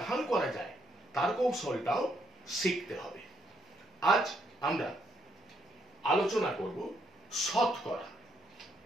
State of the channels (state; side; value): normal; both; correlation 0.73